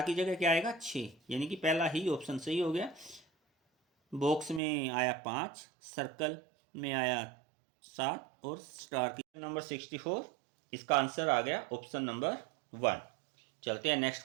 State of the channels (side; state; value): left; drops out; at 4.6 s